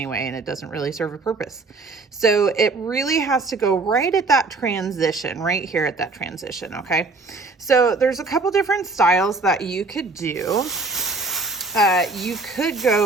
and it doesn't really serve a purpose. So it really has to go right at that transition, right here at that transition. Okay. So there's a couple different styles that you could do. You could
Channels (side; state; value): left; quieter; 3.7 dB